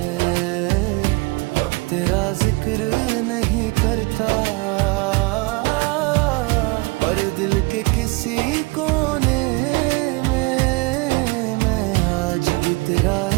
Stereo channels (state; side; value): quieter; left; 25.7 dB